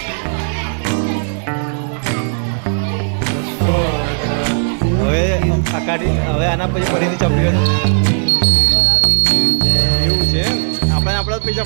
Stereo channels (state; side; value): silent; left; digital silence